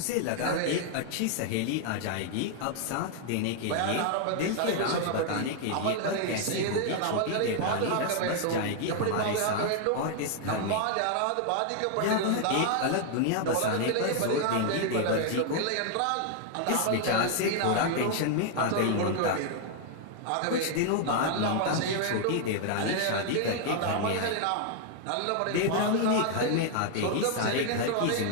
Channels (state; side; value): different; both; correlation 0.00